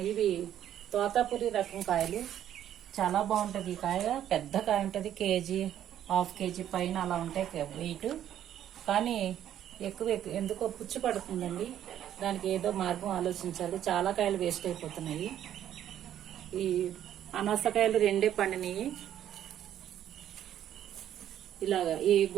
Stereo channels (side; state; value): left; quieter; 10.9 dB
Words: ఇవి తోతాపురి రకం కాయలు, చాలా బాగుంటుంది. ఈ కాయ పెద్ద కాయ ఉంటుంది, కేజీ హాఫ్ కేజీ పైన అలా ఉంటాయి వెయిట్. కానీ ఎక్కువ ఎందుకో పుచ్చి పడుతుందండి. దానికి ఏదో మార్గం ఆలోచించాలి. చాలా కాయలు వేస్ట్ అయిపోతున్నాయి. ఈ అనాసకాయలు రెండే పండినాయి. ఇలాగా ఈ